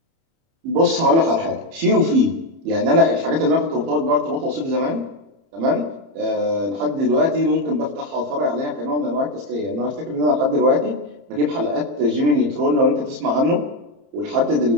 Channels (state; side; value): late; left; 30 ms